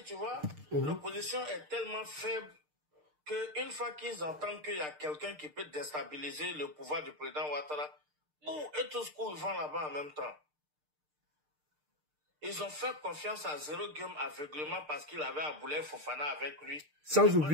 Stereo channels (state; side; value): late; left; 6.6 ms